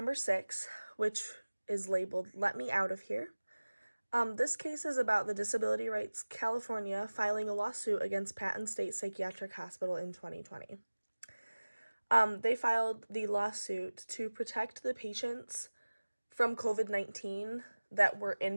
6, which is labeled Let Me Out of Here. This case is about the Disability Rights California filing a lawsuit against Patton State Psychiatric Hospital in 2020. They filed the lawsuit to protect the patients from COVID-19 that were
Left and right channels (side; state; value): both; inverted; correlation -1.00